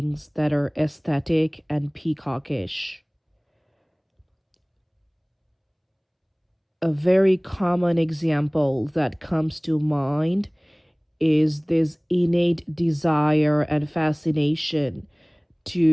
that are aesthetic and peacockish. A very common example that comes to mind is this innate desire and fascination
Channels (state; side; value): identical; both; correlation 1.00